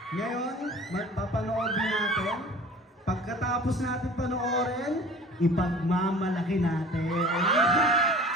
Ngayon, papanoodin natin. Pagkatapos natin panoorin, ipagmamalaki natin.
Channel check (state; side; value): normal; both; correlation 0.43